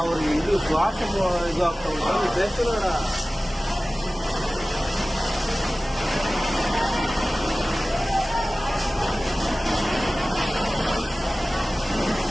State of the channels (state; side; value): normal; both; correlation 0.97